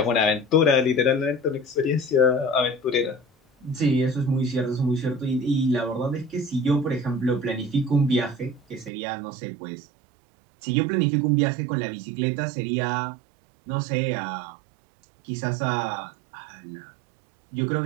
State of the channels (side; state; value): left; drops out; at 8.9 s